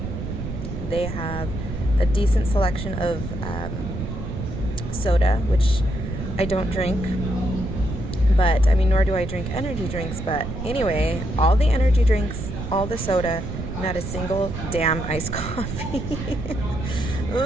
They have a decent selection of soda, which I don't drink, but I mean, nor do I drink energy drinks, but anyway, all the energy drinks, all the soda, not a single damn iced coffee.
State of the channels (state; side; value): noise; right; rumble, 6 dB below the sound